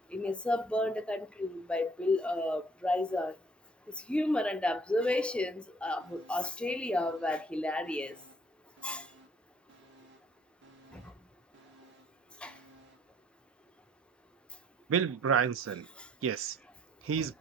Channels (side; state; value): both; normal; correlation 0.60